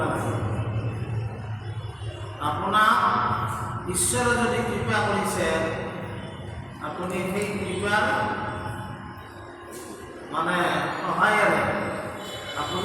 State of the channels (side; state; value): both; identical; correlation 1.00